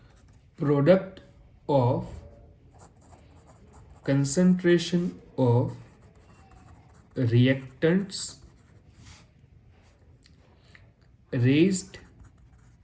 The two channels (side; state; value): both; identical; correlation 1.00